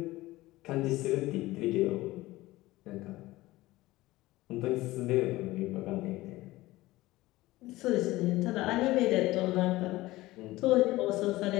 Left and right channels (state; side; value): quieter; right; 18.3 dB